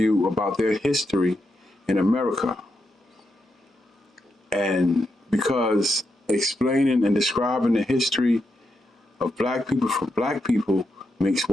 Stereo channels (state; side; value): normal; both; correlation 0.84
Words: about their history in America. And because explaining and describing the history of black people for black people makes